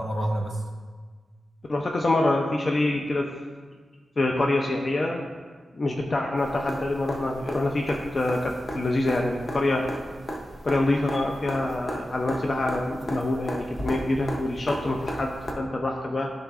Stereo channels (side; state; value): both; normal; correlation 0.93